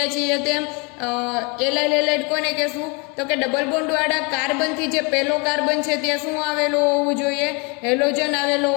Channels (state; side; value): quieter; right; 31.5 dB